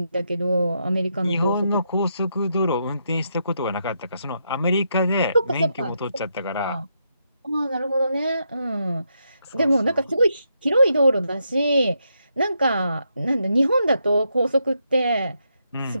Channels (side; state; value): both; inverted; correlation -0.80